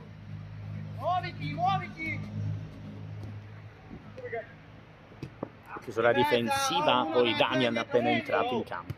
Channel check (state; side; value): identical; both; correlation 1.00